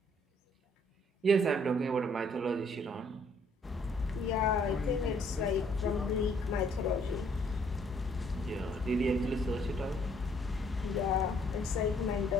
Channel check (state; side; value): normal; both; correlation 0.64